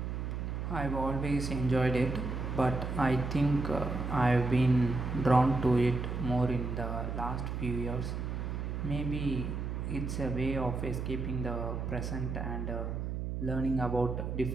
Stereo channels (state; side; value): noise; right; hum, 3 dB below the sound